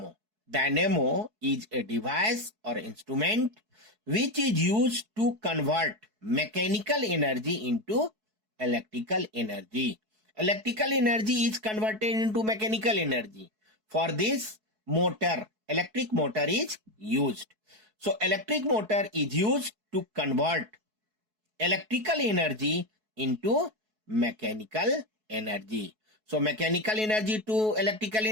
Dynamo is a device or instrument which is used to convert mechanical energy into electrical energy. Electrical energy is converted into mechanical energy. For this, electric motor is used. So electric motor is used to convert electrical energy into mechanical energy. So mechanical energy to electrical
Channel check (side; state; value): left; late; 4.6 ms